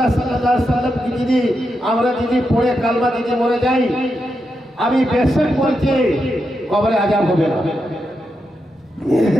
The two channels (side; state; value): both; normal; correlation 0.85